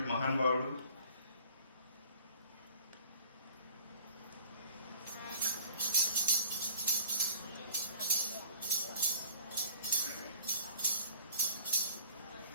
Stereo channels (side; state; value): both; inverted; correlation -0.50